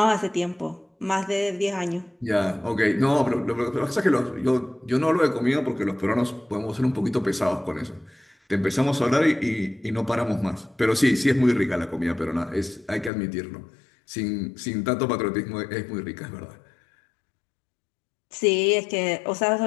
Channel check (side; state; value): right; drops out; at 13.1 s